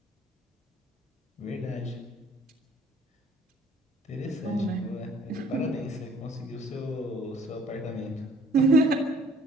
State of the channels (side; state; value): both; normal; correlation 0.56